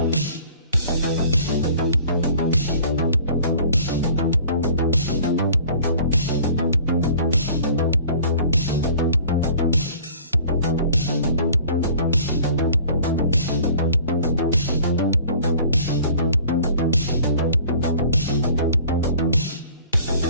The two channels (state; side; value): inverted; both; correlation -0.49